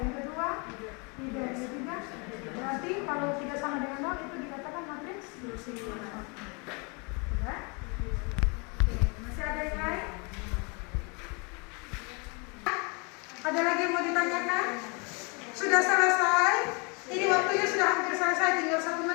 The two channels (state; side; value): quieter; right; 32.1 dB